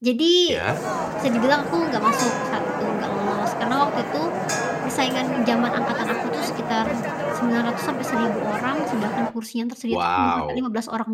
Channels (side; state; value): both; identical; correlation 1.00